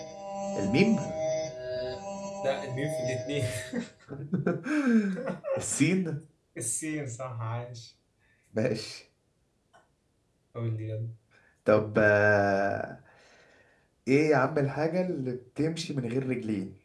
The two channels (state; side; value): identical; both; correlation 1.00